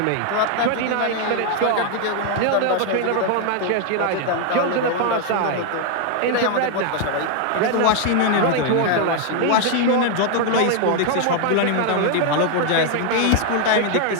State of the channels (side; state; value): both; different; correlation 0.00